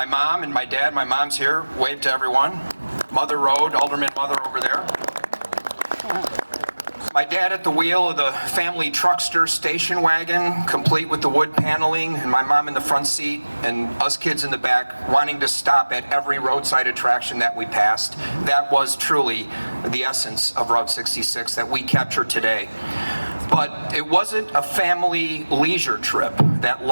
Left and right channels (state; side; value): inverted; both; correlation -1.00